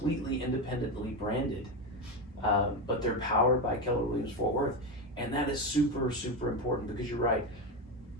independently branded, but they're powered by Keller Williams Fort Worth. And that is super, super important because you're right.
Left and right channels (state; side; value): normal; both; correlation 0.14